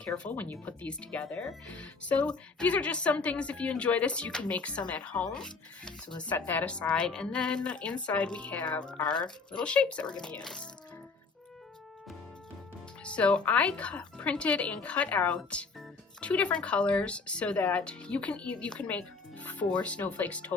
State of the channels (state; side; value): quieter; right; 4.4 dB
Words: when you put these together. So these are just some things, if you enjoy this, you can make some at home. So let's set that aside. And then inside we have our little shapes that we're going to use. So I printed and cut out two different colors so that you can make 4 snowflakes